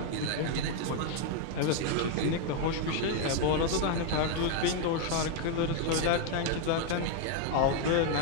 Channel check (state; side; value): different; both; correlation 0.00